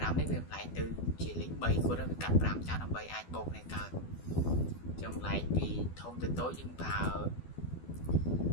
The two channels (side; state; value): right; late; 12 ms